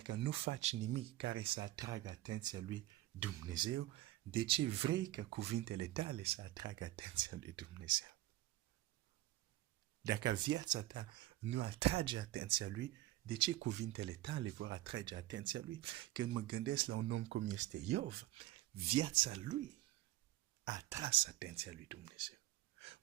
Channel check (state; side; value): quieter; left; 16.0 dB